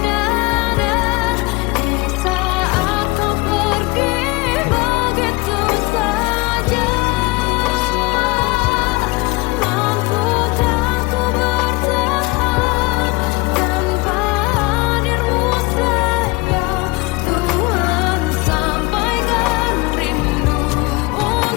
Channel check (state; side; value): quieter; right; 23.6 dB